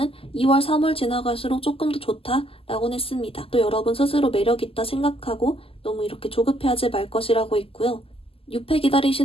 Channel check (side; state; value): right; late; 0.27 ms